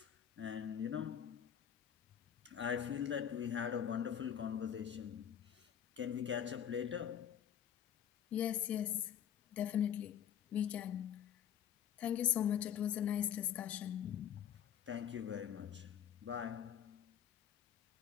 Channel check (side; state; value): right; quieter; 9.3 dB